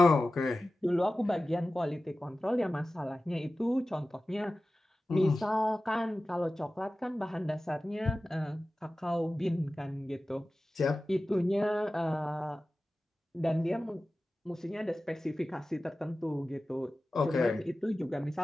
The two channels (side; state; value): both; normal; correlation 0.95